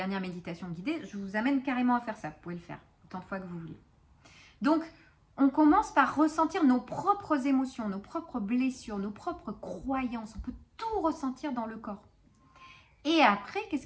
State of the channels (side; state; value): both; identical; correlation 1.00